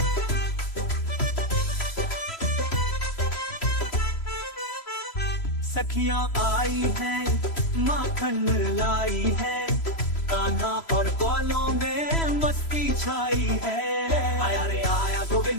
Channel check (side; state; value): right; late; 3.0 ms